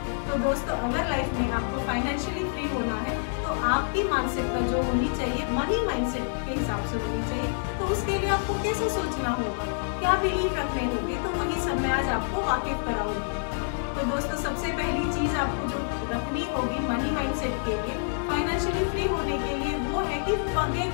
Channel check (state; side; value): silent; right; digital silence